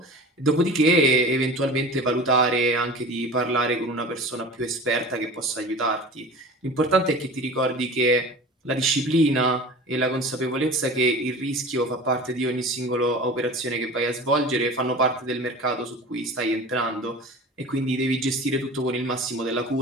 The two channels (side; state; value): both; normal; correlation 0.37